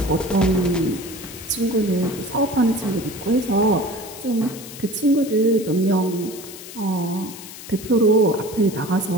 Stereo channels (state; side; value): noise; left; hiss, 14 dB below the sound